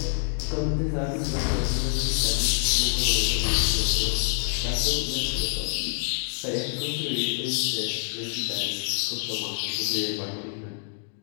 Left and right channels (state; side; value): silent; right; 61 dB below the other